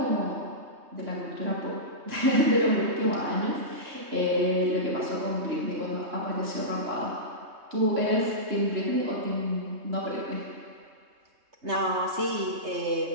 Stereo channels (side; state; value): left; late; 3.2 ms